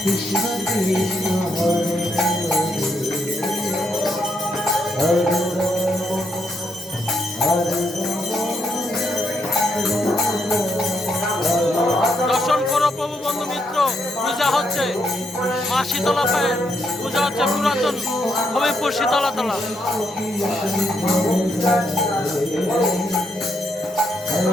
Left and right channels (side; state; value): both; normal; correlation 0.77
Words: দর্শন করো প্রভু বন্ধু মিত্র, পূজা হচ্ছে মা শীতলা পায়ে, পূজা হচ্ছে পুরাতন হবিবপুর শীতলাতলা।